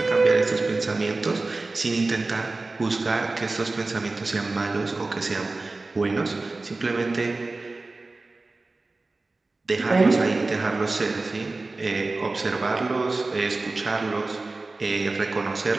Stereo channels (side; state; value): left; quieter; 3.4 dB